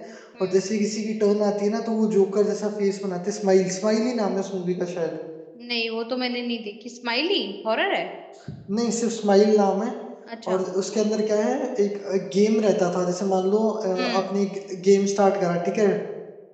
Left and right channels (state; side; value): identical; both; correlation 1.00